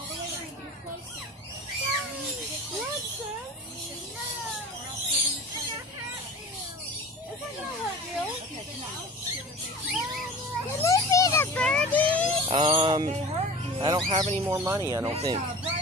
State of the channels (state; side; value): normal; both; correlation 0.38